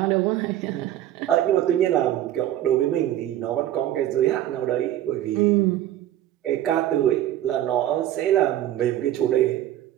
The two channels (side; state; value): left; quieter; 12.7 dB